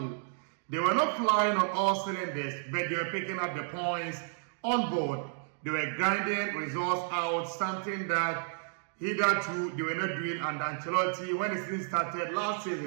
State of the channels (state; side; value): silent; left; 57 dB below the other